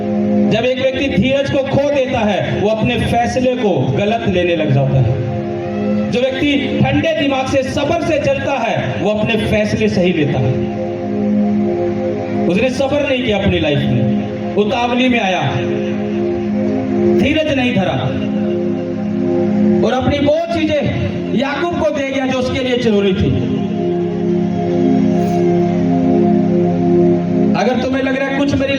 जब एक व्यक्ति धीरज को खो देता है, वो अपने फैसले को गलत लेने लग जाता है। जो व्यक्ति ठंडे दिमाग से सब्र से चलता है, वो अपने फैसले सही लेता है। उसने सब्र नहीं किया अपनी लाइफ में, उतावली में आया, धीरज नहीं धरा और अपनी वो चीजें याकूब को दे गया जो उसके लिए जरूरी थी। अगर तुम्हें लग रहा है कुछ मेरी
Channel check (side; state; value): both; identical; correlation 1.00